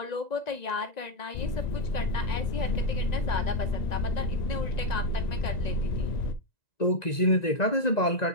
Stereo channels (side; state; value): right; late; 1.9 ms